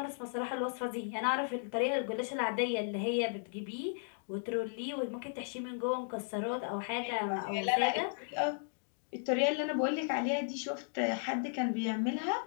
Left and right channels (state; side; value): silent; right; digital silence